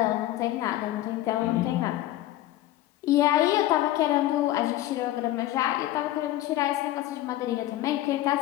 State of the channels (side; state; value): right; quieter; 14.7 dB